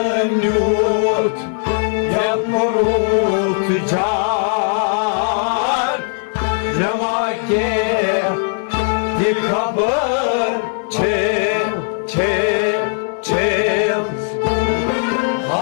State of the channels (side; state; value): right; silent; 67 dB below the other